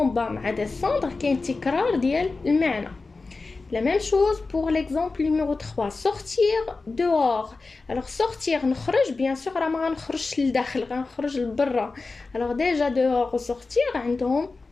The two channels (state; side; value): quieter; right; 3.8 dB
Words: bas مع descendre كاين تكرار ديال المعنى. La même chose pour l'exemple numéro 3 sortir dehors. Alors sortir نخرج بيان سور راه ما غنخرجش للداخل غنخرج لبرا. alors déjà dehors و sortir عندهم